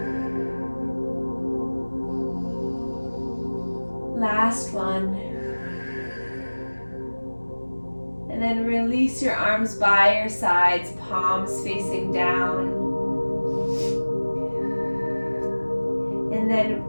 Last one. And then release your arms by your sides, palms facing down. And then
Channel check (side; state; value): both; inverted; correlation -1.00